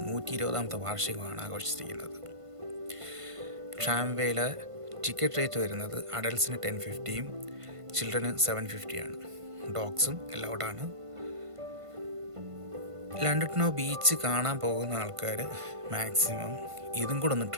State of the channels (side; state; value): left; late; 1.5 ms